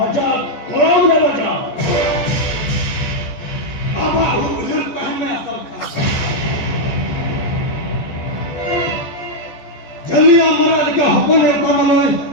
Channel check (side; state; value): right; late; 14 ms